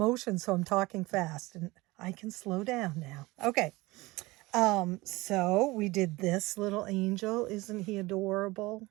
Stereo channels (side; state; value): left; quieter; 21.4 dB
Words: So I'm talking fast and I can slow down now. Okay. So we did this little angel. Isn't he adorable?